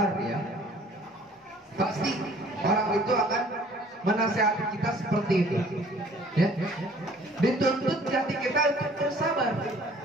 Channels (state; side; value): normal; both; correlation 0.54